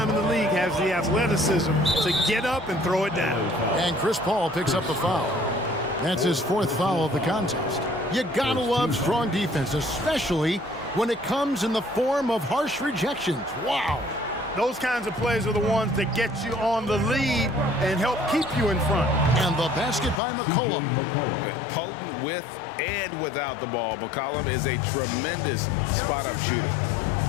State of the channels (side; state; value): right; drops out; at 20.2 s